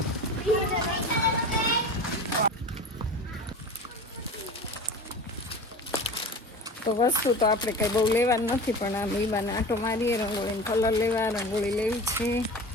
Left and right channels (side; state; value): both; normal; correlation 0.34